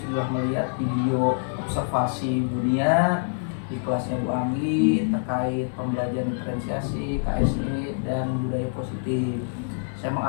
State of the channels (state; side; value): silent; right; digital silence